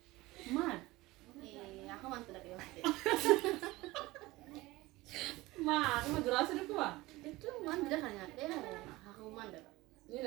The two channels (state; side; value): quieter; left; 19.9 dB